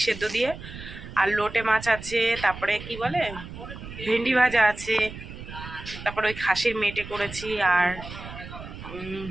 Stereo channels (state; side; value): noise; right; rumble, 12 dB below the sound